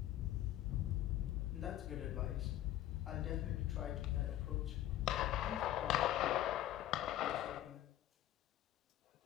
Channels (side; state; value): right; quieter; 13.2 dB